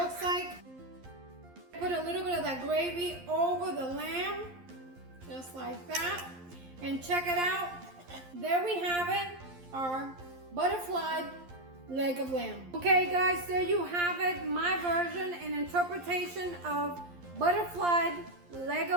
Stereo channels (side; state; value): left; late; 11 ms